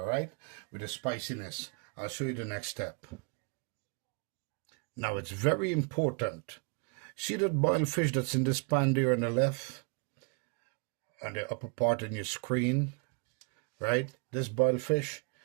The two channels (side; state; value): left; quieter; 36.6 dB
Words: right, with the spiciness. I'll show you the next step. Now, it's very important. See that boiled fish that's in this pan there on the left, on the upper part in your screen, right? This boiled fish,